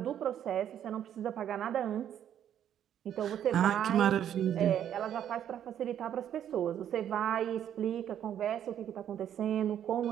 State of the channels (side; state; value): left; quieter; 10.1 dB